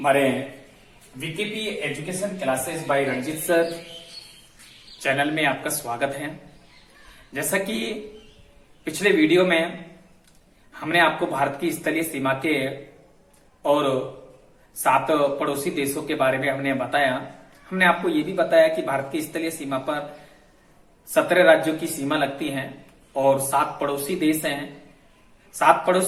VKP education classes by Ranjit sir channel में आपका स्वागत है। जैसा कि पिछले वीडियो में हमने आपको भारत की स्थलीय सीमा के और 7 पड़ोसी देशों के बारे में हमने बताया। हमने आपको ये भी बताया कि भारत की स्थलीय सीमा पर 17 राज्यों की सीमा लगती है और 7 पड़ोसी देश हैं। 7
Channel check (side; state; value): both; identical; correlation 1.00